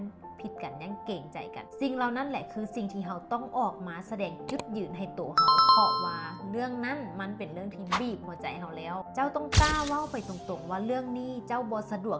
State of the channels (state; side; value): identical; both; correlation 1.00